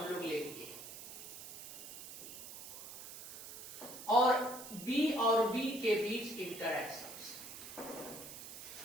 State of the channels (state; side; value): noise; right; hiss, 11 dB below the sound